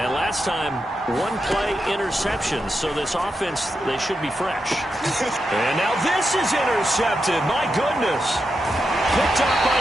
last time, 1 play interception, so this offense, they should be fresh. And now this is intercepted. My goodness. Picked up by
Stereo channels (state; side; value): normal; both; correlation 0.87